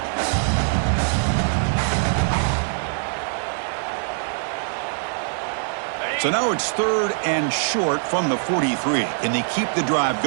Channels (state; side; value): silent; left; digital silence